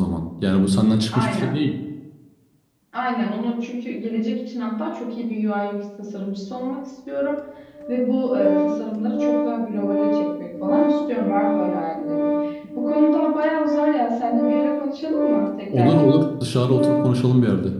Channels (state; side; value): identical; both; correlation 1.00